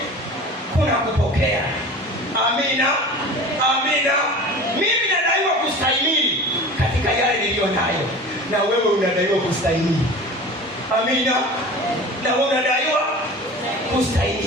kuna kupokea. Amina. Mimi nadaiwa kustahimili katika yale niliyo nayo, na wewe unadaiwa kustahimili. Amina. Na wewe unadaiwa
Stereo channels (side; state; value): both; normal; correlation 0.37